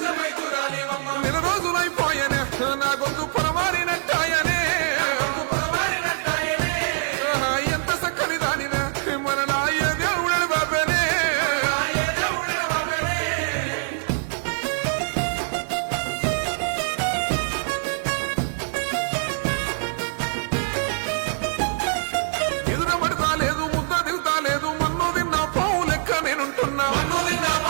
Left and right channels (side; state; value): left; silent; digital silence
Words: నెల రోజులైపోయనే నా గొంతు పొరమారినట్టాయనే. ఎంత చక్కని దానివే మనలా ఏ దేవుడే బాబేనే. ఎదురబడతా లేదు, ముద్ద దిగుతా లేదు, మన్ను తిన్న పావు లెక్క నేనుంటున్నా.